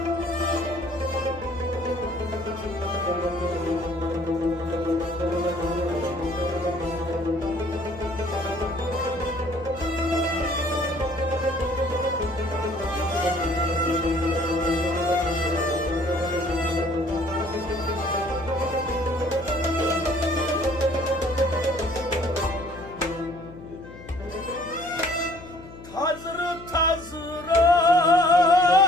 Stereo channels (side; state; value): left; noise; hum, 16 dB below the sound